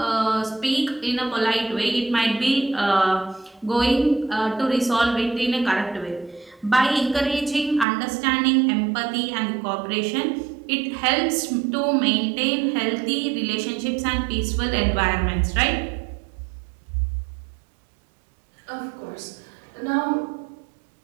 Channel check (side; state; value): left; drops out; at 7.9 s